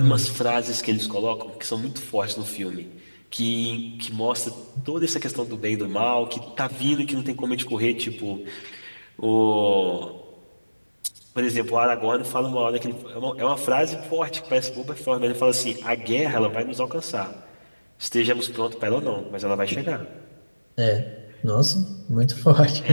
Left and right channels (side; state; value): both; inverted; correlation -1.00